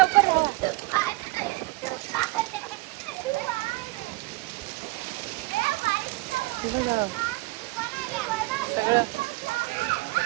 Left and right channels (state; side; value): quieter; left; 23.4 dB